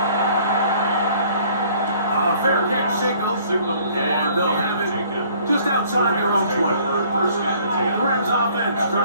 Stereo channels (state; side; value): inverted; both; correlation -0.57